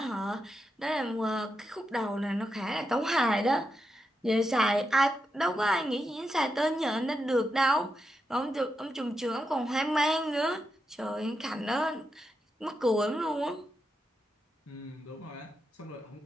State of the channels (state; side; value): normal; both; correlation 0.86